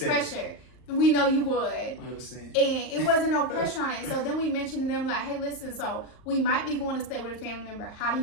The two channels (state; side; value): late; right; 38 ms